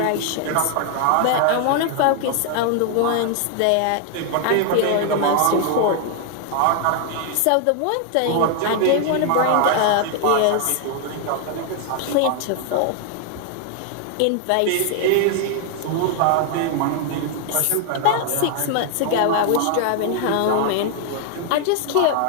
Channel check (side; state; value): both; different; correlation 0.00